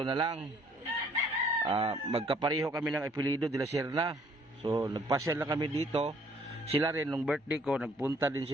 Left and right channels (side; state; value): both; normal; correlation 0.62